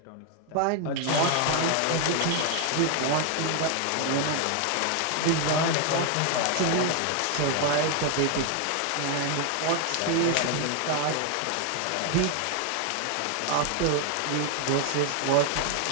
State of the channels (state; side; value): different; both; correlation 0.00